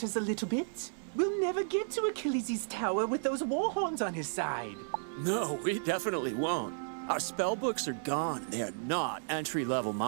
a little bit. We'll never get to Achilles' tower with those Warhorns on his side. No, we definitely won't. Our spell books are gone. They are not entry-level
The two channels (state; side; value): silent; left; digital silence